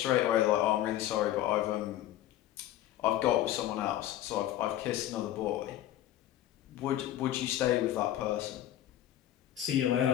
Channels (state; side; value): quieter; right; 13.0 dB